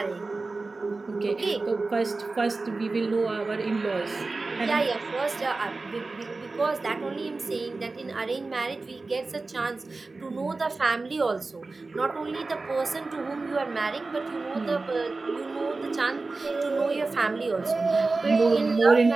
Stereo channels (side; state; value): left; quieter; 3.6 dB